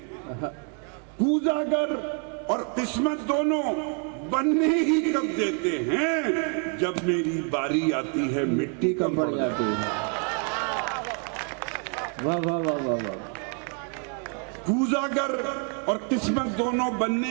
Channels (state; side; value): quieter; left; 37.5 dB